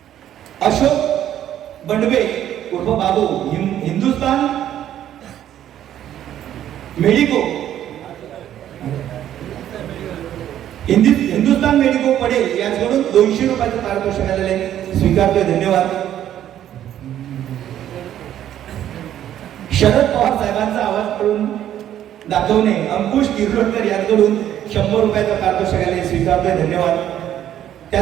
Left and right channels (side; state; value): left; quieter; 11.3 dB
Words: अशोक बंडवे उर्फ बाबू हिंदुस्तान मेडिको हिंदुस्तान मेडिको पडेल यांच्याकडून 200 रुपयाचं पारितोषिक आलेले स्वीकारतोय, धन्यवाद. शरद पवार साहेबांचा आवाज करून दाखवणे अंकुश तिर्लोटकर यांच्याकडून 100 रुपयाचं पारितोषिक आलेले स्वीकारतोय, धन्यवाद.